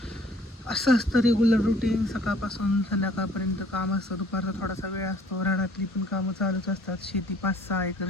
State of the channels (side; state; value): both; normal; correlation 0.56